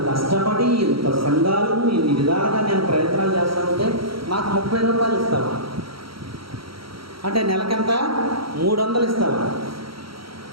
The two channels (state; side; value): late; left; 0.74 ms